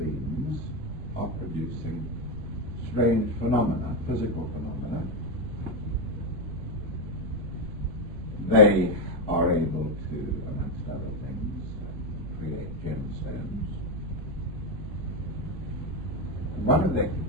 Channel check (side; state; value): both; normal; correlation 0.07